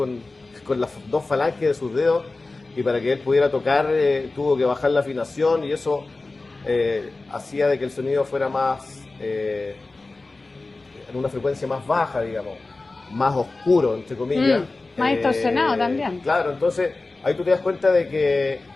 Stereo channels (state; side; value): quieter; right; 3.4 dB